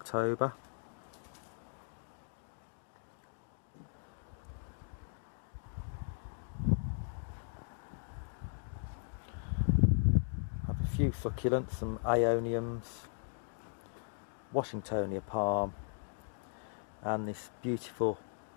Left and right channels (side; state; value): right; silent; digital silence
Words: I have a few succulents, some aeoniums, Washingtonia palm, and this beautiful